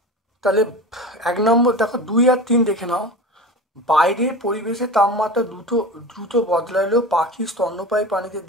তাহলে 1 নম্বর দেখো 2 আর 3 দেখে নাও। বাইরের পরিবেশে তাপমাত্রা দ্রুত বদলালেও পাখির স্তন্যপায়ী প্রাণীতে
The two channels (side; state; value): both; normal; correlation 0.31